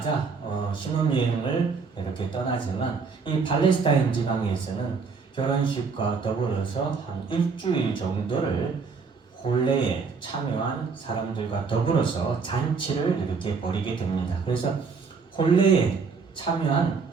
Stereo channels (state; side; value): quieter; left; 5.0 dB